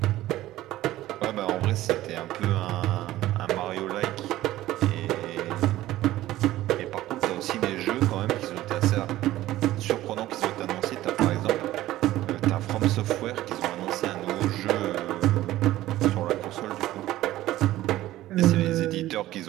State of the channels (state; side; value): quieter; left; 15.3 dB